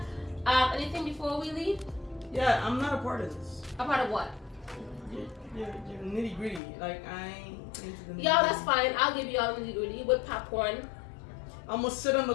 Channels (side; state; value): right; drops out; at 6.6 s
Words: Anything before we leave? Yeah, I'm not a part of this. A part of what? You're nitty gritty. Like, I ain't into the nitty. Y'all, that's fine. I'll give you all the nitty gritty with popcorn. I'm gonna sit on the